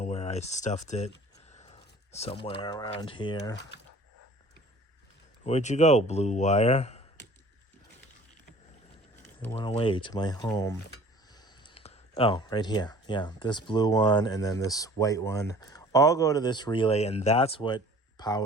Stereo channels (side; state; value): both; normal; correlation 0.48